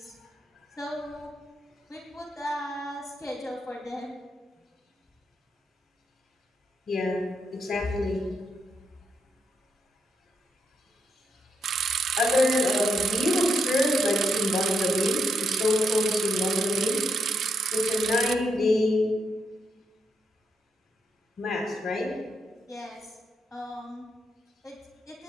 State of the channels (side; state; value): both; normal; correlation 0.79